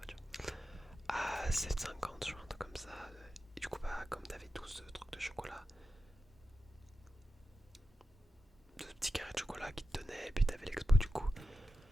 À 7,50, je crois, un truc comme ça. Et du coup, bah, comme t'avais tous ce truc de chocolat, de petits carrés de chocolat qui te donnaient, et puis t'avais l'expo du coup.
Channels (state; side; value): normal; both; correlation 0.91